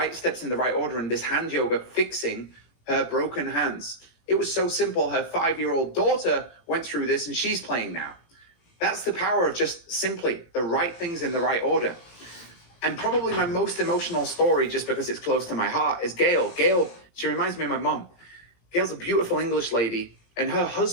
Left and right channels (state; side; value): late; right; 18 ms